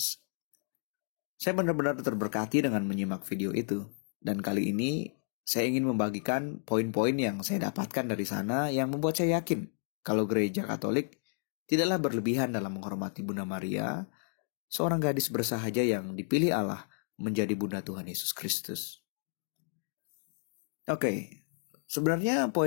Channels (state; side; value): silent; right; digital silence